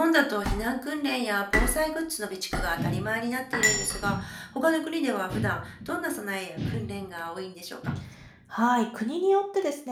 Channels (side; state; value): both; identical; correlation 1.00